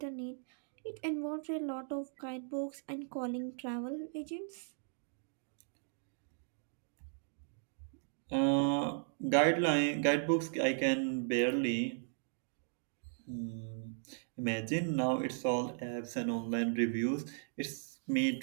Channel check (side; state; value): left; silent; digital silence